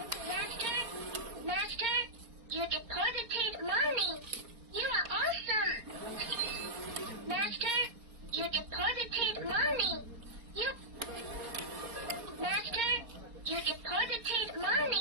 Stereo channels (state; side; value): late; left; 4.3 ms